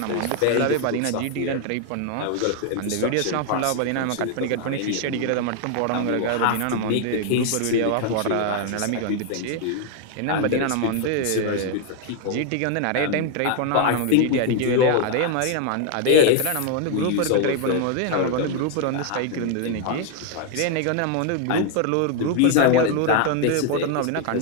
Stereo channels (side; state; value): both; different; correlation 0.00